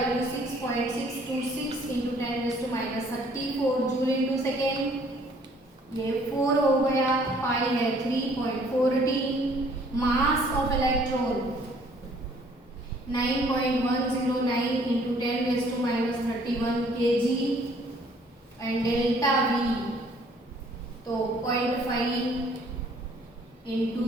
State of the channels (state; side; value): normal; both; correlation 0.59